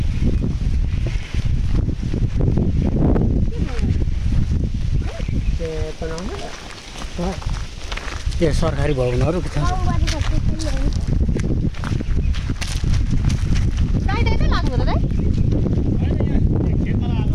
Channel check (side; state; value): both; identical; correlation 1.00